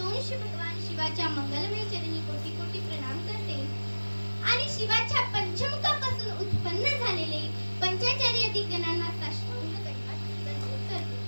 भगवान शिवाच्या मंगलमय चरणी कोटी कोटी प्रणाम करते आणि शिवाच्या पंचमुखापासून उत्पन्न झालेले पंचाचार्य दिग्गणांना साष्टांग दंडवत करते.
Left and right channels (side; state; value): both; inverted; correlation -1.00